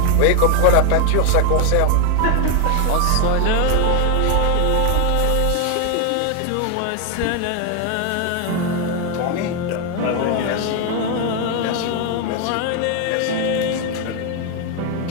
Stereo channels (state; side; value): different; both; correlation 0.01